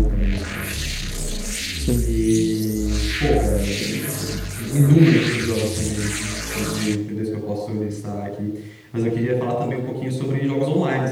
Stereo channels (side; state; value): both; identical; correlation 1.00